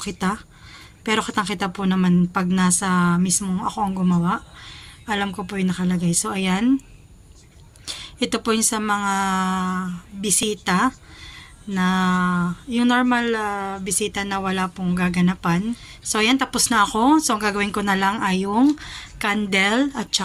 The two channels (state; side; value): identical; both; correlation 1.00